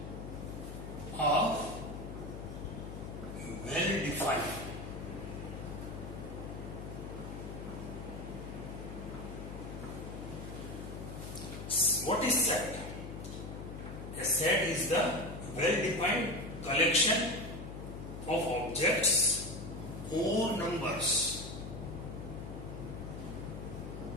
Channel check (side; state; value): left; noise; hum, 8 dB below the sound